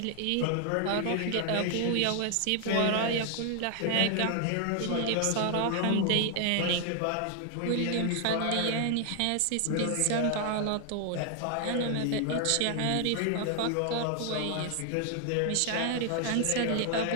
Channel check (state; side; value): different; both; correlation 0.00